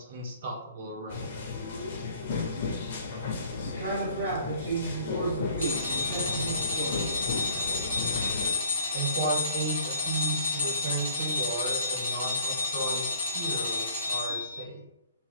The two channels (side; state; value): both; inverted; correlation -0.55